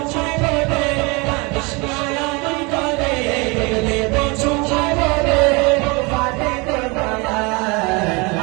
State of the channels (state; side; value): quieter; left; 27.8 dB